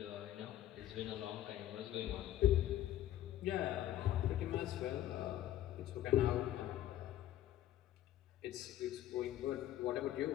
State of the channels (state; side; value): quieter; right; 12.9 dB